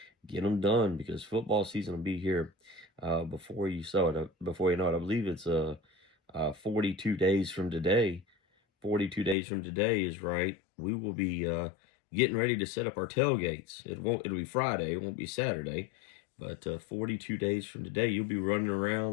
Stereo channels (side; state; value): right; drops out; at 9.3 s